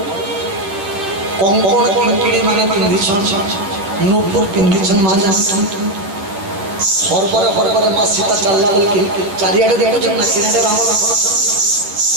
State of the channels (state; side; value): late; left; 10 ms